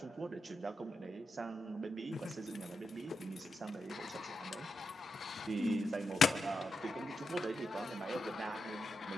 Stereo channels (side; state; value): both; normal; correlation 0.86